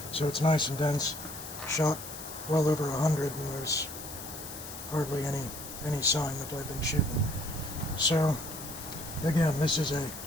so it's nice and dense. Shot well over 100, and there's hardly any sign that I've been shooting. So again, this is a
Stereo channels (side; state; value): left; noise; hiss, 11 dB below the sound